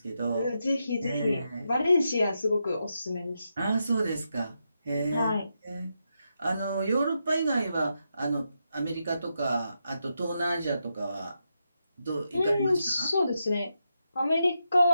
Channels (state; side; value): inverted; both; correlation -0.85